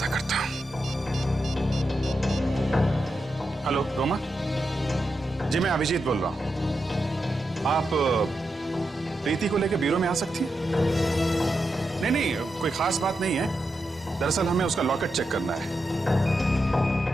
करता हूं। हेलो रोमा जी, मैं अभिजीत बोल रहा हूं। आप प्रीति को लेकर ब्यूरो में आ सकती हैं? नहीं नहीं, कोई खास बात नहीं है। दरअसल हमें उसका लॉकेट चेक करना है।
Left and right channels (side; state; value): both; normal; correlation 0.87